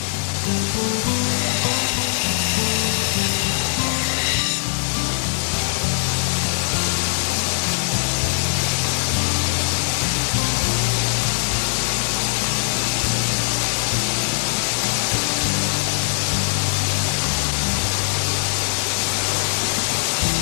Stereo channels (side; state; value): right; silent; 62 dB below the other